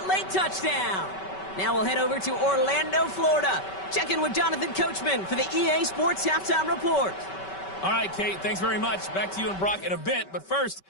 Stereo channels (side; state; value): right; late; 5.2 ms